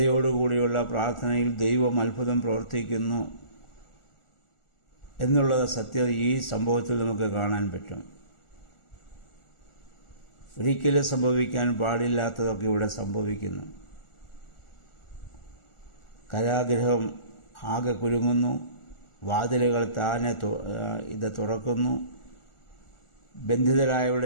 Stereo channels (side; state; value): right; late; 1.4 ms